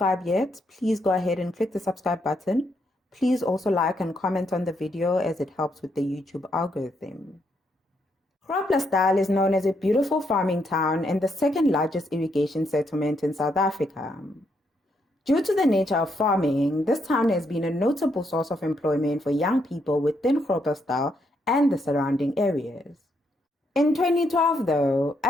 yet, please go ahead and click the subscribe button. Please also like and comment on the video as it helps with the YouTube algorithm. Groblersdal is known as a beautiful farming town and the second largest irrigation settlement in South Africa. Due to the nature of farming, this town has been a notable source of employment for young people within Groblersdal and the surrounding areas. In 2012, though,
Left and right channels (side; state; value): both; normal; correlation 0.77